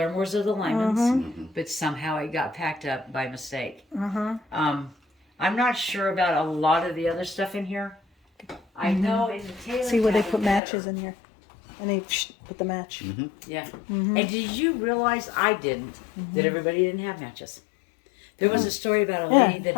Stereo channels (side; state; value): right; drops out; at 10.6 s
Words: or the Lymans, Mm-hmm. but somehow it got packed up by mistake. Mm-hmm. I'm not sure about a lot of the other stuff in here. I know in the Taylor See where they cabin put matches better. in here, and they put the match. Mm-hmm. Yeah. Mm-hmm. And did you realize I didn't that everybody didn't have matches? There was a story about a Yeah. lady that